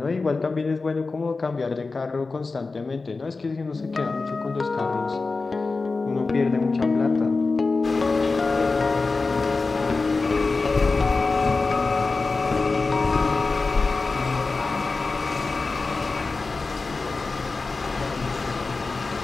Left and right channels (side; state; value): right; quieter; 3.9 dB